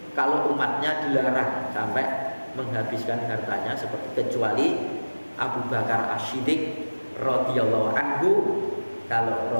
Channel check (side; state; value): both; inverted; correlation -1.00